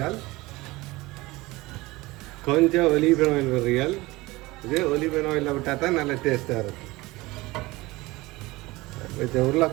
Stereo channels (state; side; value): quieter; left; 20.8 dB